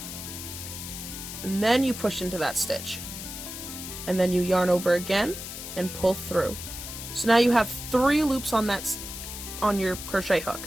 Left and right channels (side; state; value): left; noise; hiss, 9 dB below the sound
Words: and then you push into that stitch. And then you yarn over again and pull through. So now you have 3 loops on your crochet